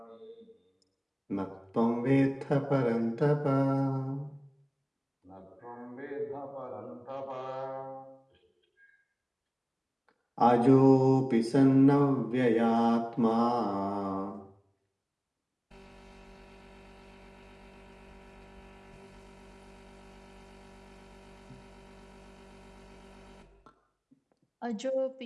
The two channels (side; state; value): both; identical; correlation 1.00